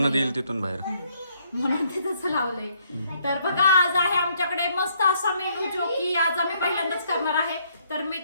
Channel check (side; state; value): both; inverted; correlation -0.69